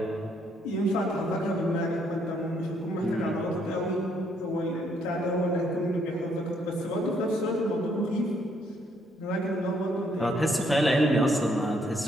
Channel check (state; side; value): normal; both; correlation 0.70